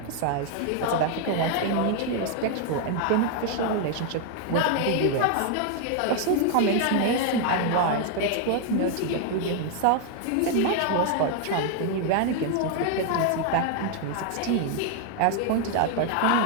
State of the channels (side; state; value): both; different; correlation 0.01